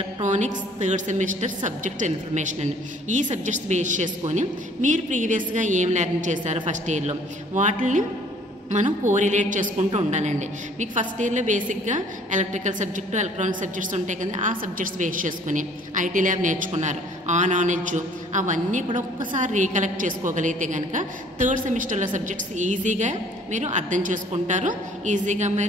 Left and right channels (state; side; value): normal; both; correlation 0.56